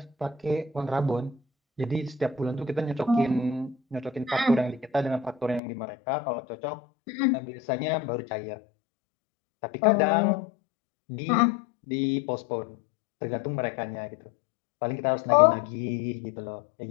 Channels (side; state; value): right; drops out; at 5.6 s